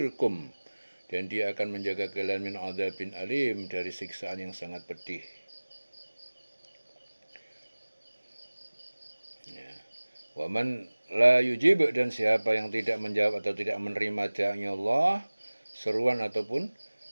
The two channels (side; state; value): both; inverted; correlation -1.00